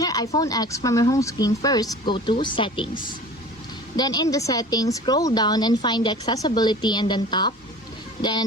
your iPhone X from your home screen, first go to Settings. Then in the Settings, scroll down and find the Accessibility and then tap. Then in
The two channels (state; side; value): normal; both; correlation 0.41